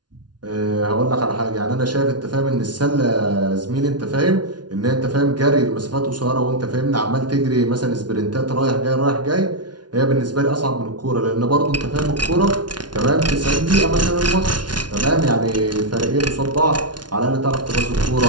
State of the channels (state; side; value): late; left; 0.70 ms